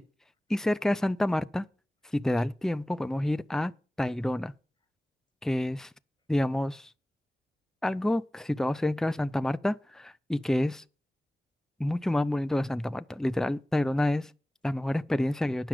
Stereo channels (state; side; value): normal; both; correlation 0.98